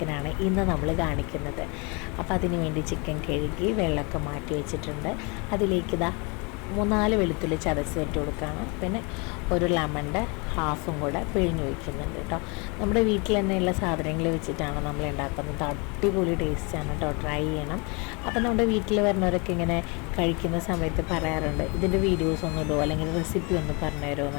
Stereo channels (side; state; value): right; quieter; 30.5 dB